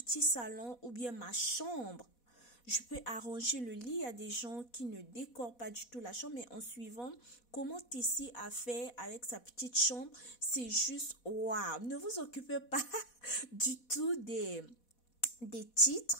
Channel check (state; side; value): late; right; 4.1 ms